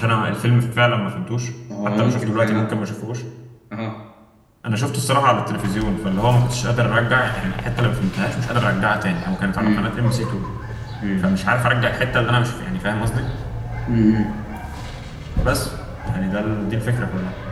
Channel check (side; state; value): both; identical; correlation 1.00